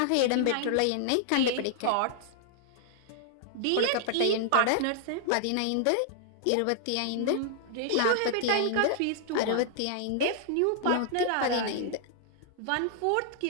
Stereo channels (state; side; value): different; both; correlation -0.01